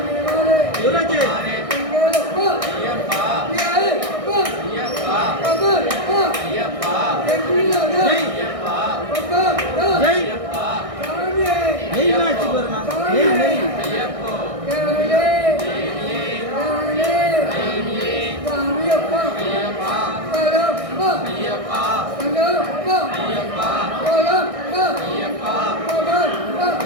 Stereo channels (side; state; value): left; late; 1.6 ms